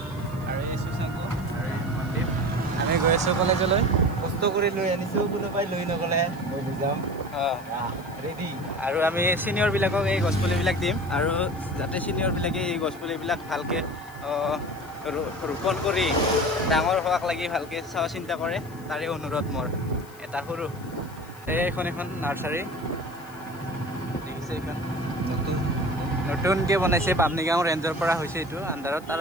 আৰু এই সুশাংক আৰু এই মন্দিৰ আমি গৈ আছোঁ কলেজলৈ কষ্ট কৰি লৈ আনিছোঁ কোনোবাই লৈ নগ'লে মই বুজাম ৰেডি আৰু আমি ছিনিয়ৰবিলাকক এই গছপুলিবিলাক দিম আৰু যাতে ছিনিয়ৰবিলাকে এই গছপুলিবিলাক ভালকৈ ৰোপণ কৰি ডাঙৰ হোৱাক লাগি ভালকৈ চোৱা চিন্তা কৰে তাৰে অনুৰোধ মোৰ এটা সৰু এইখন এখন নাৰ্চাৰী দেখিছে এইখন নতুনকৈ বনাইছে বামনিগাঁও ৰেঞ্জৰ পৰা হৈছে এইটো আণ্ডাৰত তাৰ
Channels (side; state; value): left; noise; hiss, 24 dB below the sound